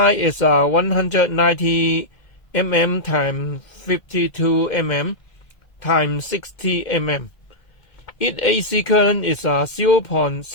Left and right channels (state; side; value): late; right; 2.1 ms